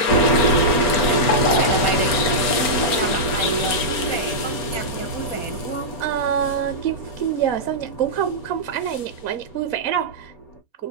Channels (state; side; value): late; right; 4.4 ms